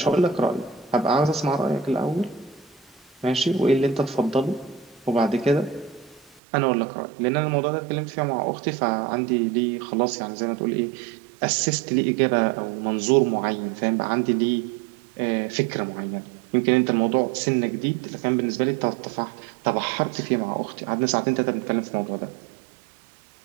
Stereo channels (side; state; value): left; drops out; at 6.4 s